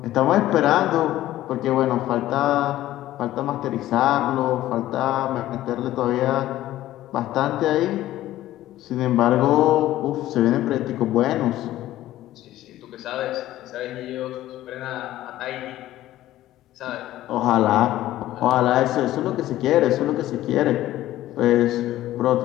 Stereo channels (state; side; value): quieter; right; 14.5 dB